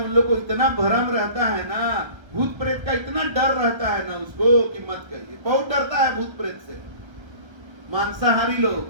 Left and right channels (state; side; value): late; left; 1.1 ms